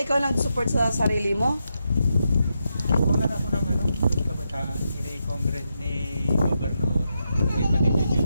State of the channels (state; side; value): inverted; both; correlation -0.85